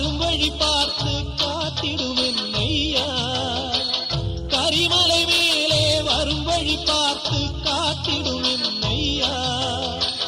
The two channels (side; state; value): both; identical; correlation 1.00